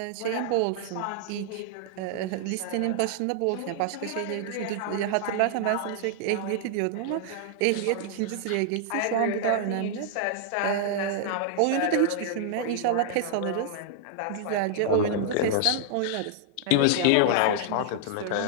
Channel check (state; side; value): different; both; correlation -0.01